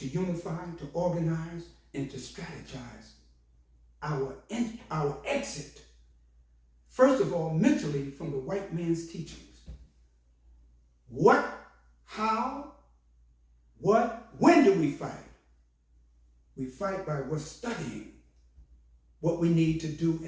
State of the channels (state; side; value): identical; both; correlation 1.00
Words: unify, to organize, and to strategize our exit. First of all, mentally from the white man's teachings. What, how, what, when do we fight? We fight by we're studying what we need to do